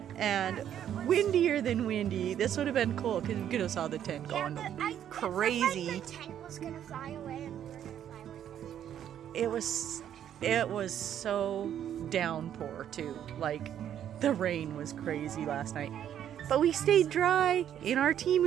and windier than windy, this would have been cool because you could have saw the tent going crazy. The tent was gonna fly away and we were gonna fly with it. It was so downpour too. Like the rain was crazy last night. But we stayed dry in our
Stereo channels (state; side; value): quieter; left; 10.1 dB